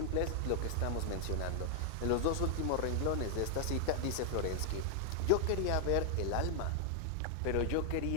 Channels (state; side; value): different; both; correlation 0.00